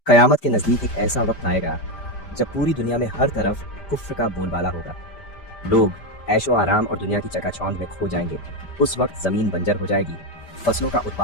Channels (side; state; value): right; late; 5.1 ms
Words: قیامت کے نزدیک ایک ایسا وقت آئے گا جب پوری دنیا میں ہر طرف کفر کا بول بالا ہوگا۔ لوگ عیش و آرام اور دنیا کی چکا چوند میں کھو جائیں گے۔ اس وقت زمین بنجر ہو جائے گی، فصلوں کا